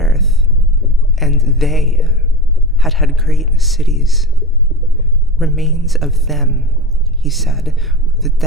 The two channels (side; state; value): both; normal; correlation 0.28